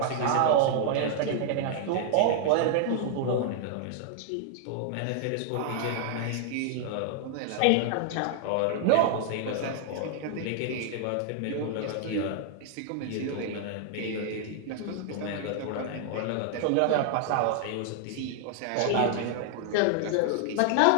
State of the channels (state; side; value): different; both; correlation 0.00